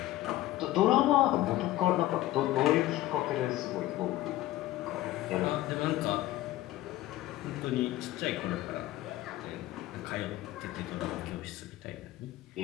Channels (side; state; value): right; quieter; 15.7 dB